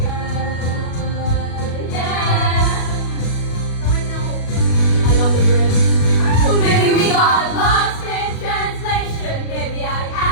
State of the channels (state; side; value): late; right; 37 ms